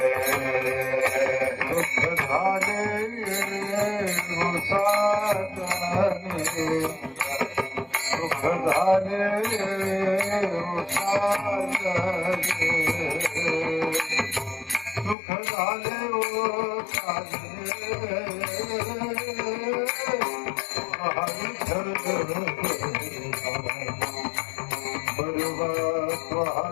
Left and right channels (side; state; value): right; drops out; at 15.2 s